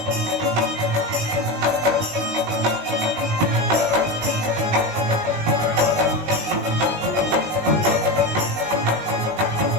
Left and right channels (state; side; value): late; left; 19 ms